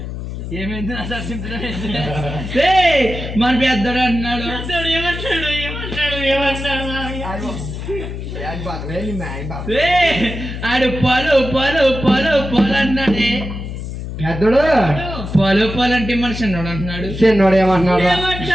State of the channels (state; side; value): noise; left; hum, 7 dB below the sound